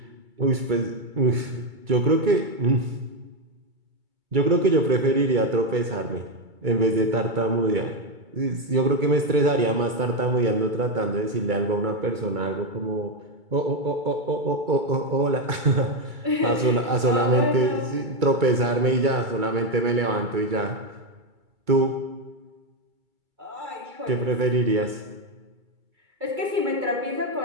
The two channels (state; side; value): late; left; 2.3 ms